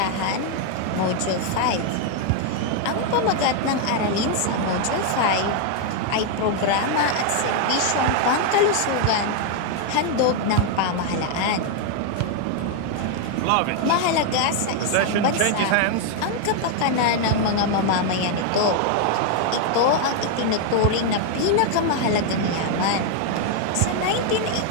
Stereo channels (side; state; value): both; different; correlation 0.00